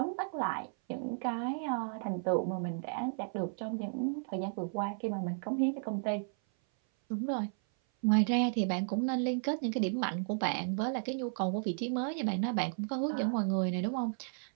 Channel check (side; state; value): left; silent; 55 dB below the other